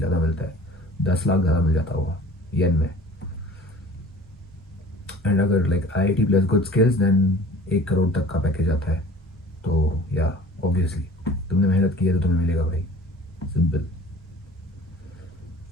ज़्यादा मिलता है, 10 लाख ज़्यादा मिल जाता होगा येन में। एंड अगर like IIT plus good skills then 1 crore तक का पैकेज आता है। तो या ऑब्वियसली तुमने मेहनत की है तो तुम्हें मिलेगा भाई, सिंपल।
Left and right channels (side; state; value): both; normal; correlation 0.45